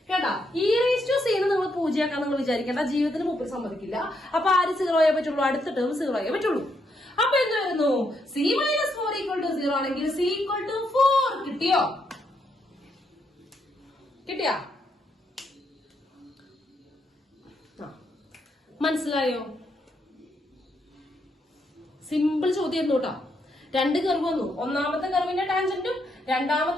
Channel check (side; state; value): both; normal; correlation 0.77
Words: കേട്ടാ. ഇ റേസ് ടു സി നിങ്ങൾ പൂജയാക്കാൻ നിങ്ങൾ വിചാരിക്കേണ്ട, ജീവിതത്തിന് മുമ്പിൽ സമ്മതിക്കില്ല. അപ്പൊ ആര് 0 ആയേ പറ്റുള്ളൂ? അടുത്ത ടേം 0 ആയേ പറ്റുള്ളൂ. അപ്പൊ എന്ത് വരുന്നു? സി -4 ഈക്വൽ ടു 0 ആണെങ്കിൽ സി ഈക്വൽ ടു 4 കിട്ടിയോ? കിട്ടിയാ? മനസ്സിലായോ? സിമ്പിൾ ചോദ്യം കേട്ടോ. രണ്ട് കർവ് വന്നു. ഒന്നാമത്തെ കർവിന്റെ ടാൻജന്റും